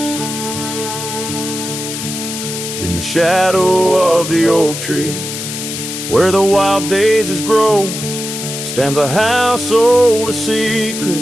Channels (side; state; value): left; noise; hiss, 6 dB below the sound